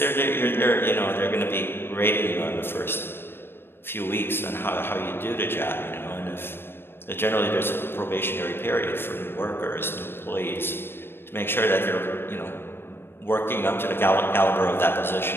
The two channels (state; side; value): late; right; 0.11 ms